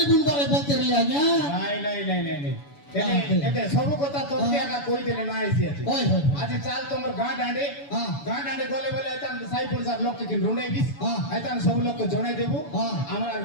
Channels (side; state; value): right; late; 7.0 ms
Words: বুনবারে বলতে রে আজ্ঞা নাই এতে সব কথা তোকে আগা কই দিলে না আইছি আছে ওই ওই আজ চাল তোমার হ্যাঁ। গাঁ ডাঁডে গলে বলে আইতাম সাই পয়সা লোক কে রুঁড়াই দিস হ্যাঁ। আইতাম সব লোক কে জনাই দেবো হ্যাঁ। আমার আর